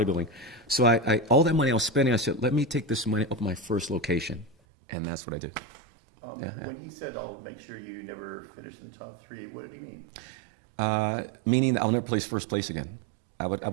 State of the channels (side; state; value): left; drops out; at 4.5 s